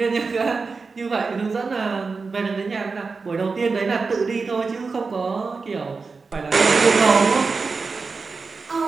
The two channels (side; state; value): left; quieter; 4.5 dB